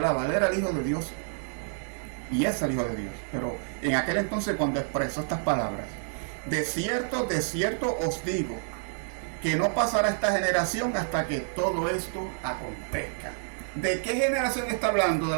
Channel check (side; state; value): left; silent; digital silence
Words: Él era el Hijo de Dios. Y es el Hijo de Dios. Pero en aquel entonces, cuando expresó estas palabras, de cierto os digo, que no pasará esta generación hasta que todo esto acontezca. ¿De qué generación está hablando? ¿De